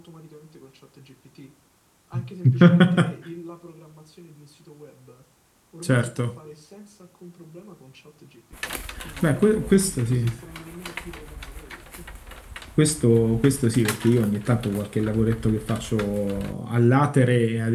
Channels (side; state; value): both; identical; correlation 1.00